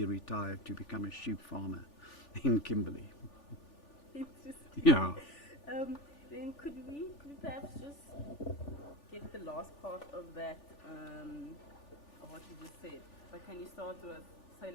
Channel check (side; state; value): right; late; 3.4 ms